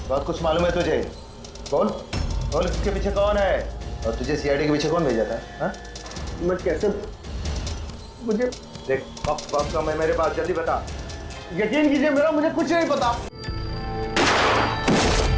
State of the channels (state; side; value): identical; both; correlation 1.00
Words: बहुत कुछ मालूम है तुझे? बोल बोल, इसके पीछे कौन है और तुझे सीआईडी के पीछे कौन भेजा था? हाँ? मैं कैसे मुझे देख वक्त समय मेरे पास, जल्दी बता। यकीन कीजिए मेरा मुझे कुछ नहीं पता।